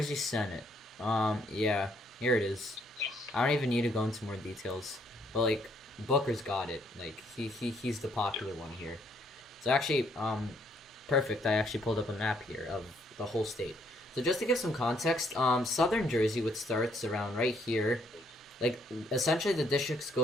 Senate. Yeah, here it is. I don't even need to go into more details, but like Booker's got it. Like he's the popular one here. So actually, perfect. I actually pulled up a map here of the whole state. So just to give some context, southern Jersey, which starts around right here, like essentially the districts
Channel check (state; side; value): normal; both; correlation 0.69